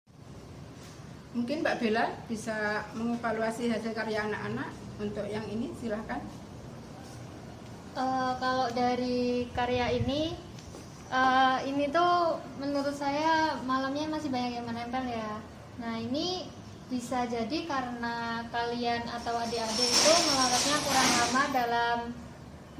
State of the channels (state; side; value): identical; both; correlation 1.00